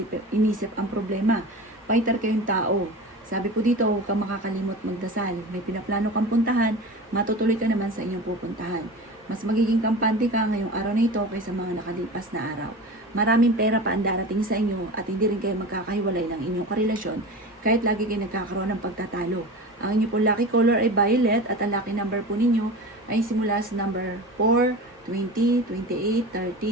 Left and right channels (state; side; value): normal; both; correlation 0.32